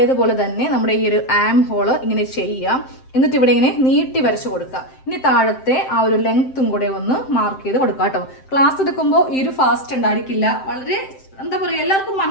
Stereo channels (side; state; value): right; late; 7.7 ms